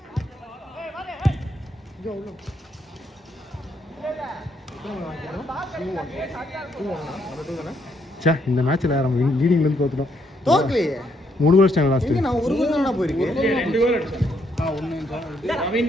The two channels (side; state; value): both; normal; correlation 0.73